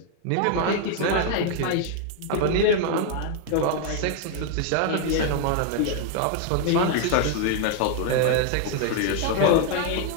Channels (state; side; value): different; both; correlation 0.01